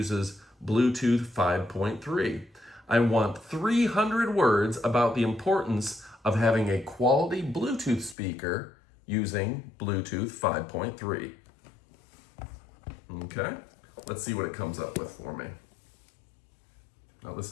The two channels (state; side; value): drops out; right; at 8.2 s